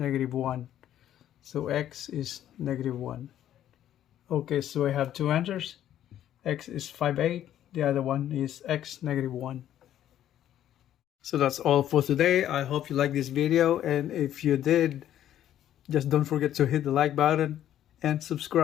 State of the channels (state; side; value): quieter; right; 11.5 dB